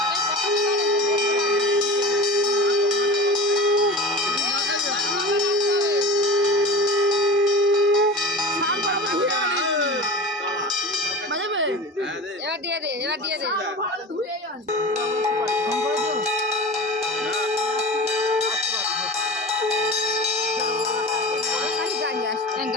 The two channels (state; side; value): normal; both; correlation 0.33